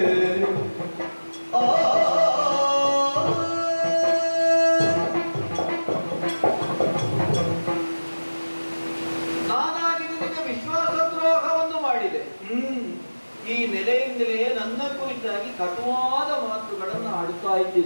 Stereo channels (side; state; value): both; inverted; correlation -1.00